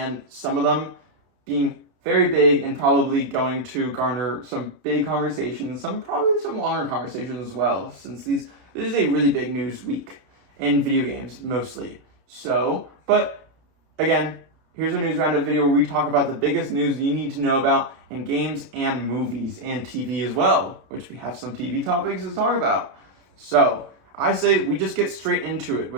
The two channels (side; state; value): left; late; 32 ms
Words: some of them being very big and probably going to garner some big conversations, probably some longer conversations as well, since this is a really big news week in video games mostly. So, but again, here's a news roundup video where we talk about the biggest news you need to know about in games and movies and TV as well, which we have some TV topics to talk about. So, I say we just get straight into it